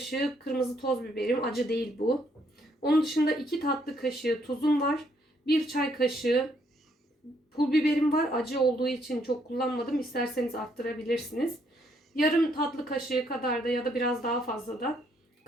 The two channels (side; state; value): both; normal; correlation 0.71